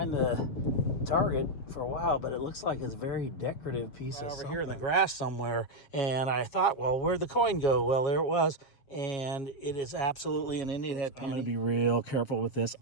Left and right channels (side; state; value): right; late; 7.3 ms